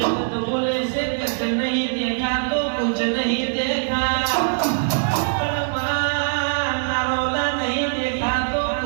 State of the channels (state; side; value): silent; left; digital silence